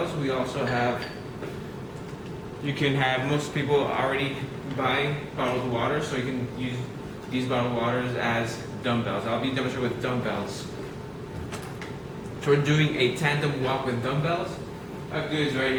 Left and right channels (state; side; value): identical; both; correlation 1.00